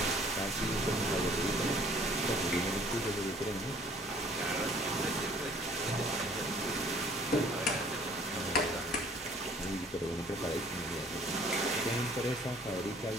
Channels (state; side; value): normal; both; correlation 0.56